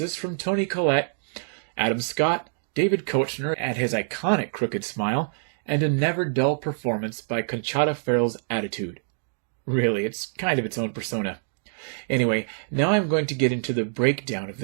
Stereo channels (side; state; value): left; silent; digital silence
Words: from Toni Collette, Adam Scott, David Koechner at his iconic crooked smile, and a never-dull performance by Conchata Ferrell's attitude. Really, it's kind of its own persona. Anyway, now I'm going to get into the breakdown of